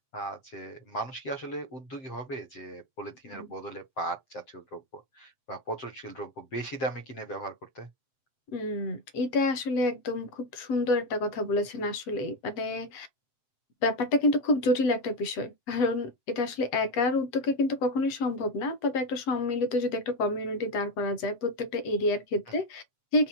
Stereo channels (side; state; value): right; late; 7.7 ms